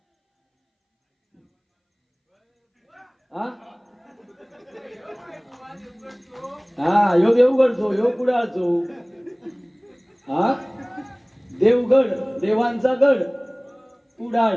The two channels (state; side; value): identical; both; correlation 1.00